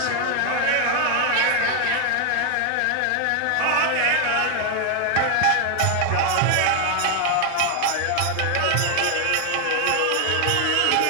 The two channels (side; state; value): both; different; correlation 0.01